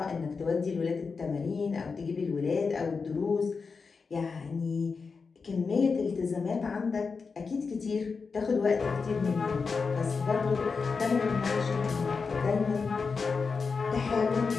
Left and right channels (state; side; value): quieter; right; 4.9 dB